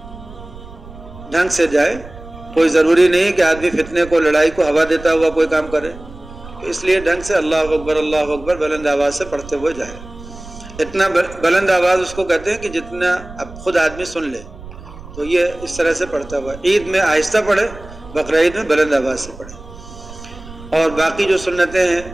ڈھنگ سے جائے. کوئی ضروری نہیں کہ آدمی فتنے کو، لڑائی کو ہوا دیتا ہوا کوئی کام کرے. اس لیے ڈھنگ سے اللہ اکبر بلند آواز سے پڑھتے ہوئے جائے. اتنا بلند آواز اس کو کہتے ہیں کہ جتنا اب خود آدمی سن لے. تو یہ اس طرح سے پڑھتا ہوا. عید میں آہستہ پڑھے، بقرعید میں بلند آواز سے پڑھے. اور باقی جو سنتیں ہیں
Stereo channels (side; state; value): right; noise; rumble, 16 dB below the sound